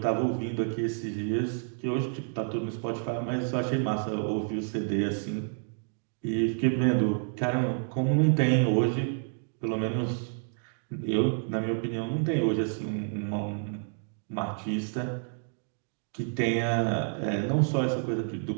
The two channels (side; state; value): left; silent; 58 dB below the other